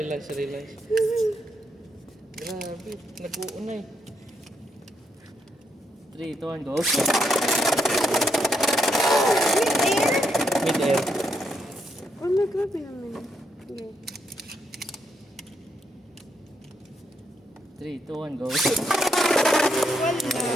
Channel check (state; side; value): normal; both; correlation 0.78